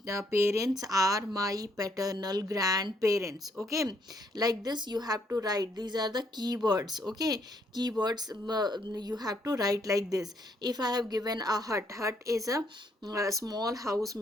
parents are my paternal grandparents. Okay, like this you have to write. These are the keywords. Okay, keywords you have to write like this. If I have given a hut, hut is a small house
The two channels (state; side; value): normal; both; correlation 0.71